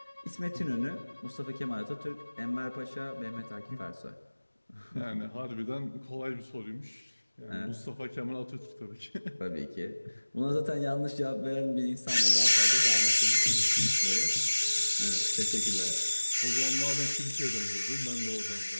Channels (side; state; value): both; inverted; correlation -1.00